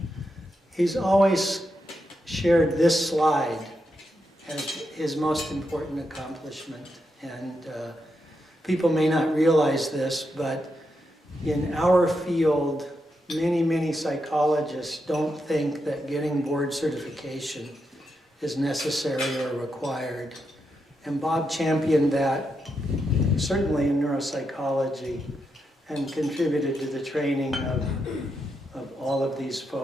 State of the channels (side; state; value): both; normal; correlation 0.84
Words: he's always shared this slide as his most important accomplishment. And people may not realize this, but in our field, many psychologists don't think that getting board certification is necessary or required. And Bob championed that, certainly in neuropsychology, and contributed to the training of all of these